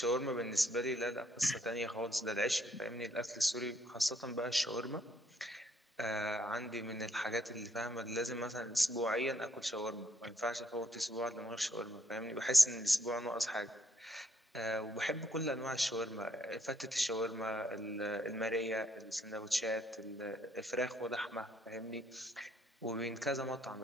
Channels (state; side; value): normal; both; correlation 0.70